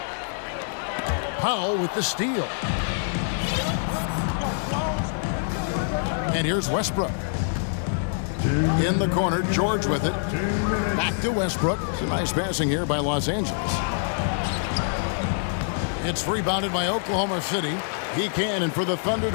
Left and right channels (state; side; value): silent; right; 61 dB below the other